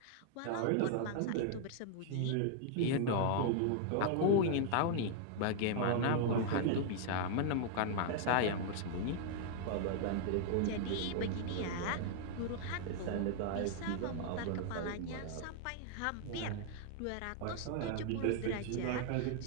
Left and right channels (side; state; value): both; different; correlation 0.00